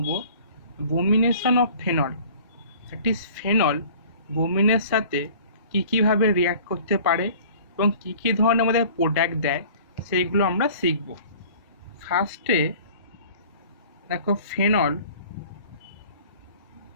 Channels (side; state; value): both; inverted; correlation -0.48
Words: bromination of phenol, that is phenol বোমিনের সাথে কীভাবে রিয়াক্ট করতে পারে এবং কী ধরনের আমাদের প্রোডাক্ট দেয় সেইগুলো আমরা শিখব। ফার্স্টে দেখো, ফেনল